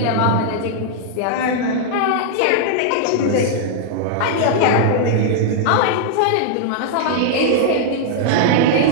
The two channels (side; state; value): both; different; correlation -0.01